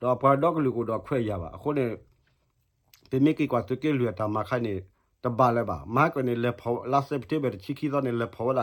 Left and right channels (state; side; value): identical; both; correlation 1.00